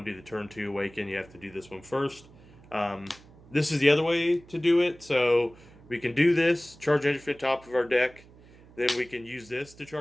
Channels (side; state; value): right; noise; hum, 24 dB below the sound